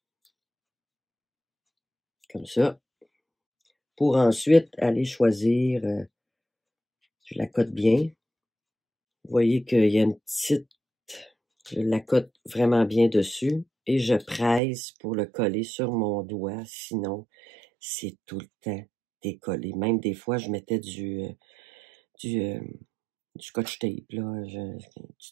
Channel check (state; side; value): drops out; left; at 14.6 s